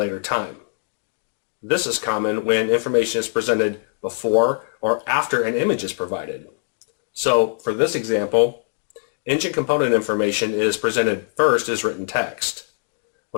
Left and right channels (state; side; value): silent; right; digital silence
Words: time. This is common when information is presented before or after an image is provided. So for this example, engine component information is presented first as written text.